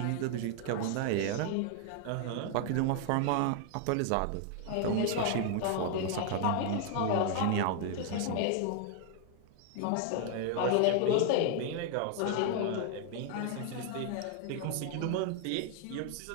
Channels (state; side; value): different; both; correlation 0.00